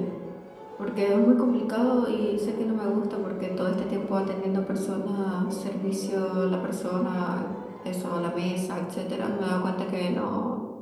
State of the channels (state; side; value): identical; both; correlation 1.00